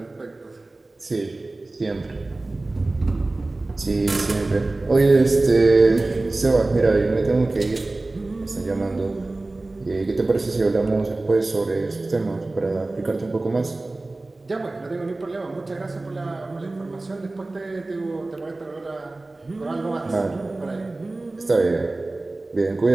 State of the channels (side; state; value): left; quieter; 3.0 dB